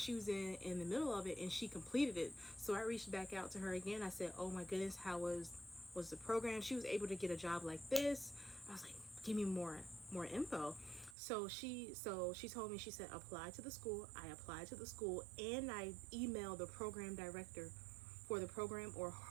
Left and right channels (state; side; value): drops out; left; at 11.2 s